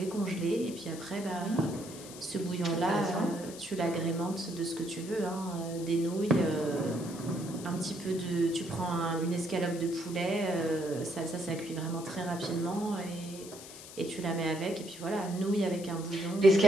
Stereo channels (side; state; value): left; noise; hiss, 14 dB below the sound